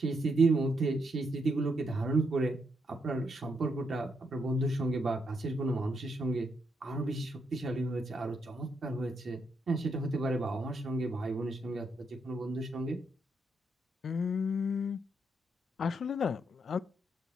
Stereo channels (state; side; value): normal; both; correlation 0.78